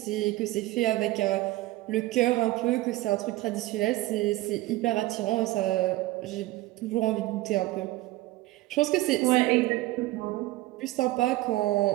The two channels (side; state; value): left; quieter; 18.2 dB